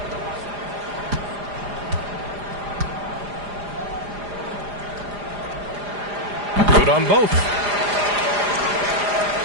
Good on both.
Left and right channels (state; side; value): late; left; 4.9 ms